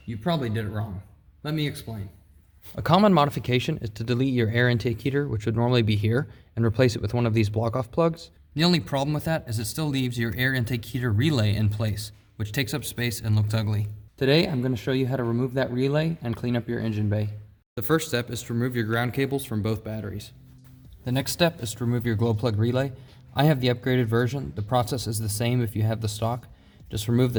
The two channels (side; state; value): both; identical; correlation 1.00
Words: you probably did it wrong. Let me explain. A common modification is to delete your air intake heater, which would normally be here, and replace it with one of these block-off plugs. The only problem with that is it still leaves your air intake heater relay in place, which takes up space and looks ugly. Today, I'm going to show you how to remove that relay and clean up your engine bay. The first step is to remove your ground cables from both batteries. The next step is to remove your glow plug relay. I have the upgraded version. The process is the same if you have the stock. Just remove